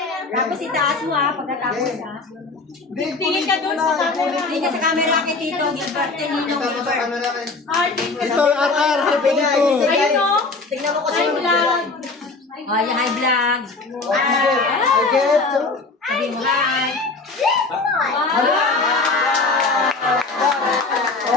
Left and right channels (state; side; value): quieter; right; 3.7 dB